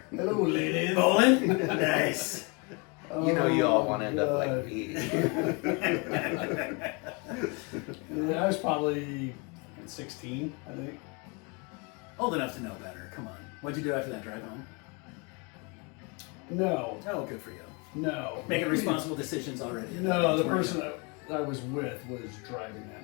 Hello, ladies. Bowling? Nice. You know you all want to end up God. like me. I was probably 16, I think. Old enough to know better. Come on. What'd you do after that drive home? No, Oh, good for you. no. Making responsible decisions already. No, the Weren't person you? I was with was driving that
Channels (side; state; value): right; quieter; 30.6 dB